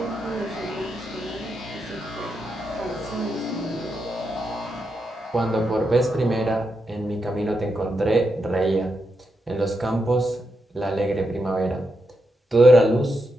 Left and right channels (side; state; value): both; normal; correlation 0.84